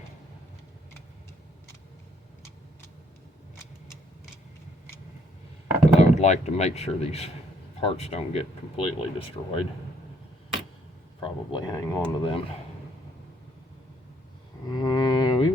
Like to make sure these parts don't get completely destroyed. Probably hang on to them.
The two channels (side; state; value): both; normal; correlation 0.68